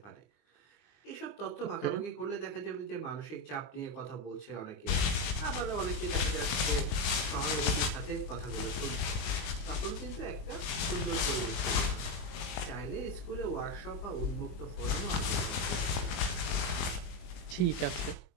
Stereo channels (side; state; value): right; late; 20 ms